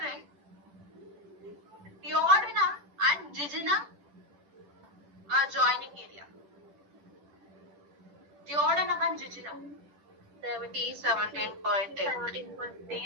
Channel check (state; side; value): late; left; 10 ms